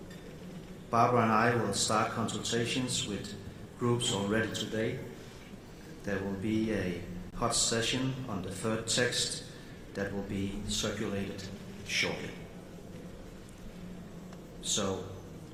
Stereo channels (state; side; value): identical; both; correlation 1.00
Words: Barbara and I will start consultations with groups already today. There will be a hot session on the third text that will be circulated shortly. So,